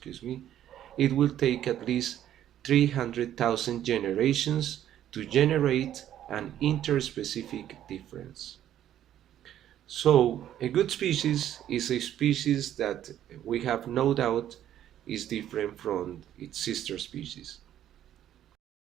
it will take at least 300,000 generations to generate an interspecific difference. So a good species is a species that we have no doubt is different from its sister species.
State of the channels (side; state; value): left; quieter; 11.4 dB